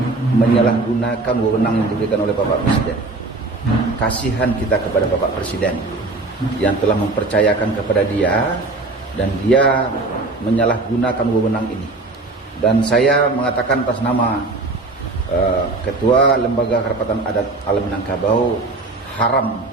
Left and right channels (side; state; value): left; quieter; 3.3 dB